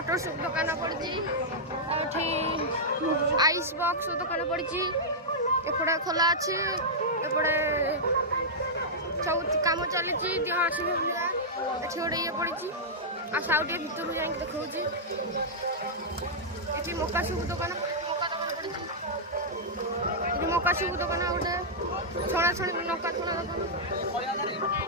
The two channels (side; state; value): both; normal; correlation -0.09